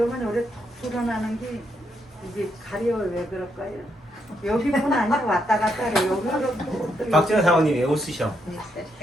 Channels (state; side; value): normal; both; correlation 0.78